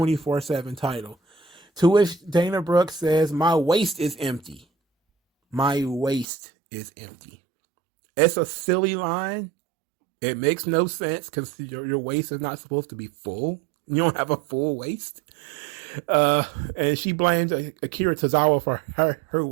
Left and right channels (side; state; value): left; drops out; at 6.2 s